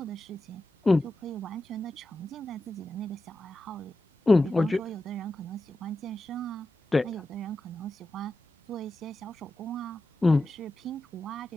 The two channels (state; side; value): normal; both; correlation 0.91